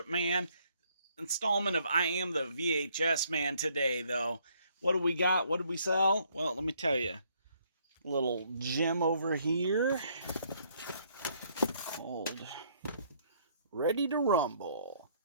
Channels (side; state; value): both; inverted; correlation -0.67